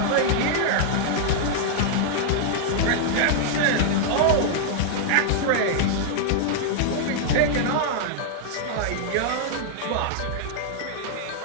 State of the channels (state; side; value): different; both; correlation -0.01